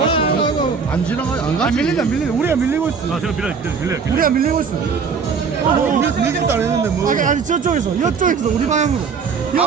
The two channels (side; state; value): left; quieter; 5.7 dB